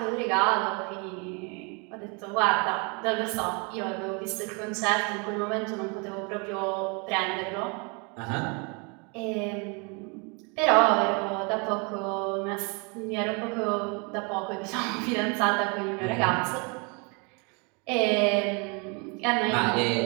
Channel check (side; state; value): left; quieter; 32.8 dB